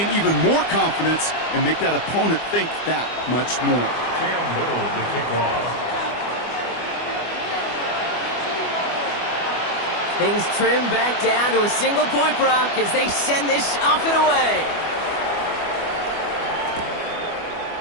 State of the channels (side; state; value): right; late; 25 ms